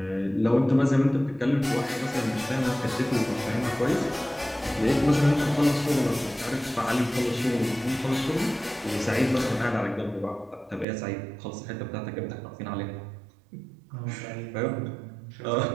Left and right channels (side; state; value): left; drops out; at 10.9 s